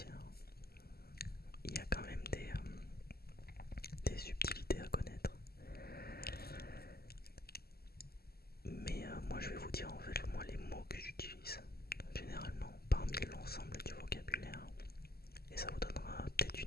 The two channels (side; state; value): right; late; 0.45 ms